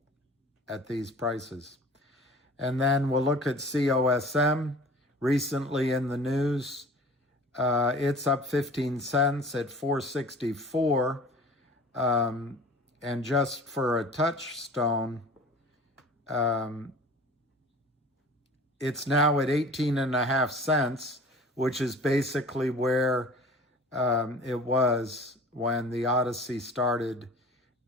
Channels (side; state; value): both; normal; correlation 0.43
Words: at these prices. And then we'll look at COSM. Recently in the news, it's up 15 cents at 464. And just for a touchstone, it's now at 18.5 cents, which is basically where it was when the Odyssey started,